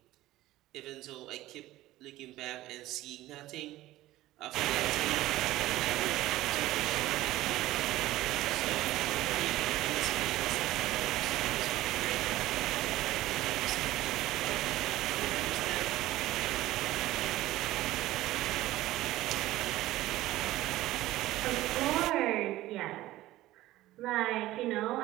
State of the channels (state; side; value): quieter; left; 16.2 dB